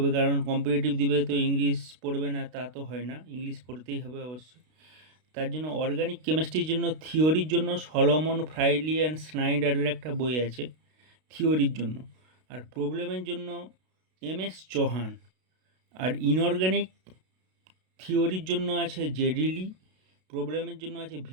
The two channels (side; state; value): left; late; 32 ms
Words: কারণ কম্পিটিটিভ দিবে তো ইংলিশ পড়বে না তা তো হয় না, ইংলিশ পড়তেই হবে অবশ্যই। তার জন্য অর্গানিক কেমিস্ট্রির জন্য থিওরির জন্য সলোমন ফ্রাইলি অ্যান্ড স্নাইডারের একটা বই আছে থিওরির জন্য। আর প্রবলেমের জন্য এম.এস. চৌহান। আর ইনঅর্গানিক থিওরির জন্য আছে জেডিলি, প্রবলেমের জন্য আছে